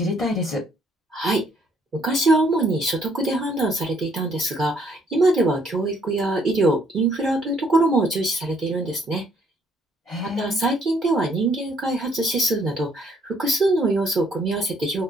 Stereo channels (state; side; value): normal; both; correlation 0.66